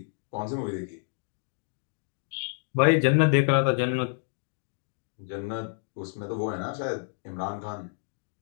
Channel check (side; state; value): right; silent; digital silence